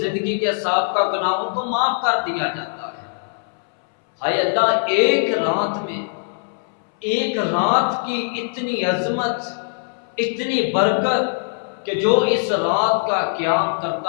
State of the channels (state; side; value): silent; right; 65 dB below the other